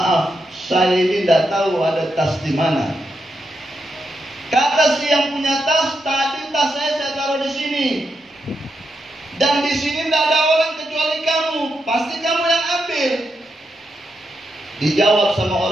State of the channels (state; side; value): normal; both; correlation 0.84